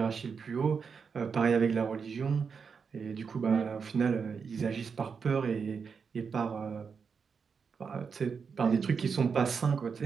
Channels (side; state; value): left; quieter; 5.9 dB